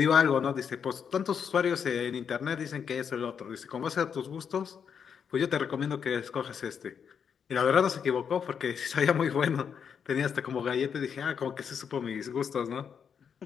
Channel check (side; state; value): right; quieter; 7.2 dB